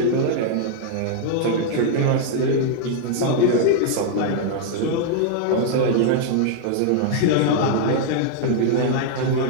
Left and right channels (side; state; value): both; different; correlation -0.01